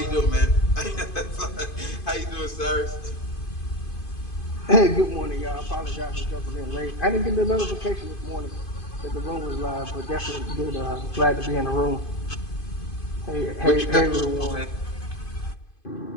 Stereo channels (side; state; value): right; late; 2.5 ms